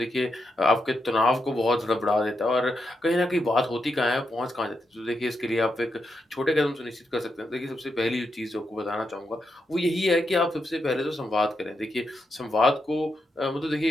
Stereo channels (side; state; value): both; normal; correlation 0.84